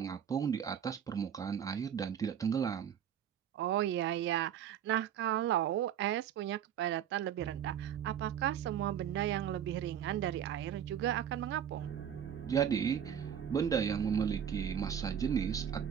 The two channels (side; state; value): left; quieter; 9.1 dB